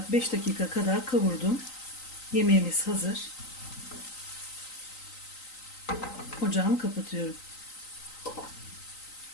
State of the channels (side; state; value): right; late; 3.9 ms